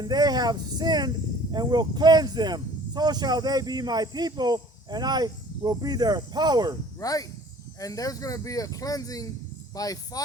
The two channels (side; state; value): both; normal; correlation 0.50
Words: they have sinned, and will cleanse them. So shall they be my people, and I will be their power. Right? And there's going to be a cleansing by